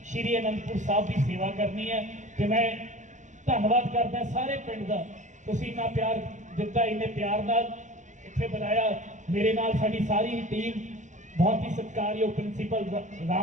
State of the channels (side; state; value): left; late; 0.35 ms